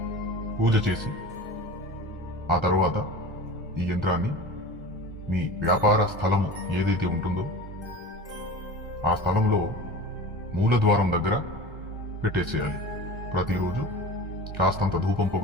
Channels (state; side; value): normal; both; correlation 0.35